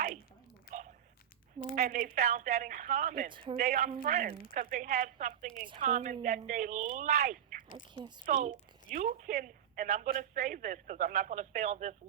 And they found that in common. They are friends because they have something in common that they like. I can't speak. So you can, and I'm going to say this because I'm not going to stay on this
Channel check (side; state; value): left; quieter; 9.6 dB